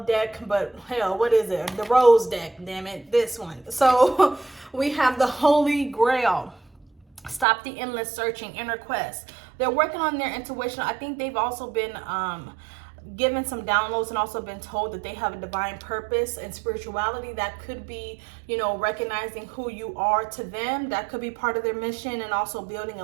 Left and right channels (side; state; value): left; drops out; at 7.5 s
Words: deck, but hell, what is it? The rose deck, damn it, this one. So we have the Holy Grail. Stop the endless searching, inner quest. They're working on their intuition. I think they've also been given some downloads and also been told that they have a divine purpose and spirituality. That could be, you know, recognizing who you are to them. That could be part of their mission, and also building a